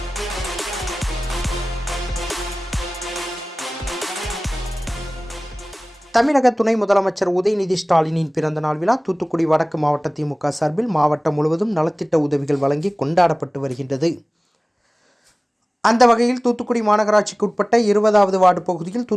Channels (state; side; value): normal; both; correlation 0.98